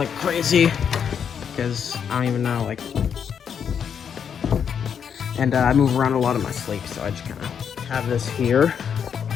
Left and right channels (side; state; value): right; quieter; 7.6 dB